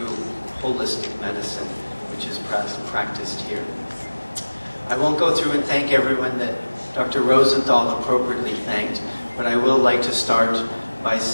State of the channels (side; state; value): both; inverted; correlation -1.00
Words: holistic medicine, which is practiced here. I won't go through and thank everyone that Dr. Rosenthal appropriately thanked, but I will like to start by